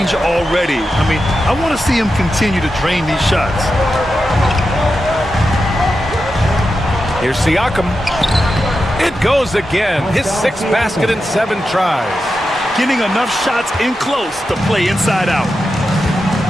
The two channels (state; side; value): normal; both; correlation 0.89